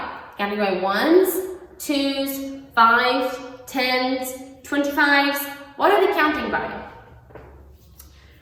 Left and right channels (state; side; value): identical; both; correlation 1.00